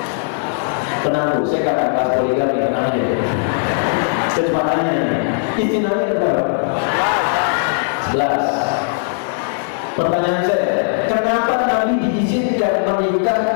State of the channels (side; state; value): right; silent; digital silence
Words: Tenang Bu, saya akan bahas poligami, tenang aja. Kecepatannya, istri Nabi ada berapa? 11. Pertanyaan saya, kenapa Nabi diizinkan